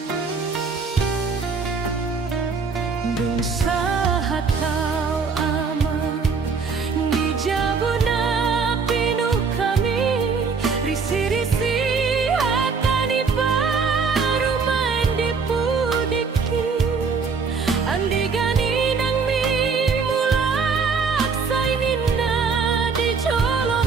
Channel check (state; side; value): quieter; left; 5.1 dB